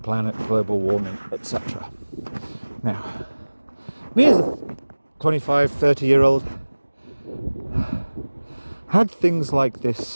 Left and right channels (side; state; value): both; inverted; correlation -1.00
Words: global warming, etc. Now, me as a 25, 30-year-old, had things like